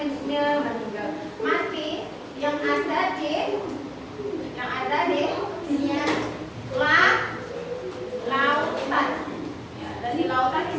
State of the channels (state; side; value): identical; both; correlation 1.00